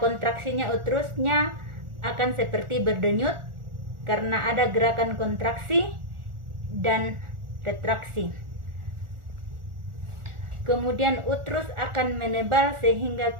kontraksinya uterusnya akan seperti berdenyut karena ada gerakan kontraksi dan retraksi. Kemudian uterus akan menebal sehingga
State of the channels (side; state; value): left; late; 1.4 ms